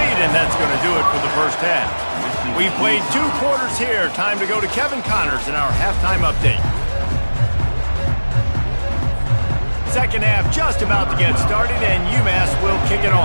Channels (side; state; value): both; inverted; correlation -1.00